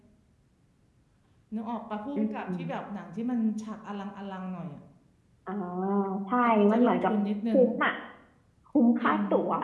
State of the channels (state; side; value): identical; both; correlation 1.00